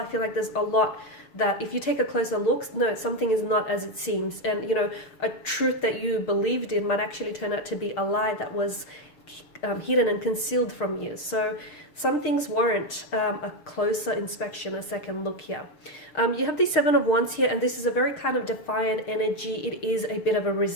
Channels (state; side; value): late; right; 6.5 ms